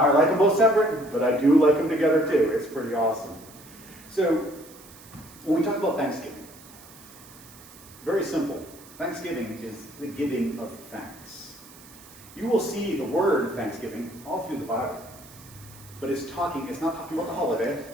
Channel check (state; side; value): noise; right; hiss, 21 dB below the sound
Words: like them both separate, but I do like them together too. It's pretty awesome. So, when we talk about Thanksgiving, very simple. Thanksgiving is the giving of thanks. You will see the word Thanksgiving all through the Bible. But it's not talking about the holiday.